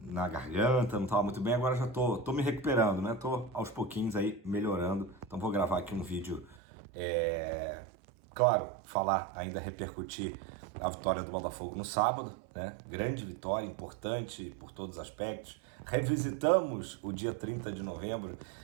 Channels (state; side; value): drops out; left; at 6.6 s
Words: na garganta, não tava muito bem. Agora já tô me recuperando, né? Tô aos pouquinhos aí melhorando. Então vou gravar aqui um vídeo, claro, falar, ainda repercutir a vitória do Botafogo no sábado, né? Grande vitória, importante por todos os aspectos. Revisitamos o dia 30 de novembro